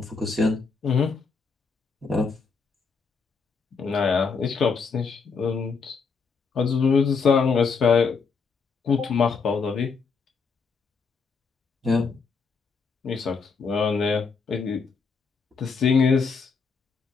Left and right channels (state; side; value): quieter; right; 5.1 dB